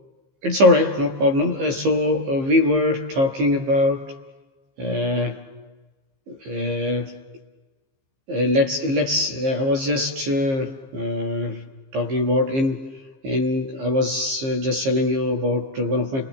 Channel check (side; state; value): left; late; 15 ms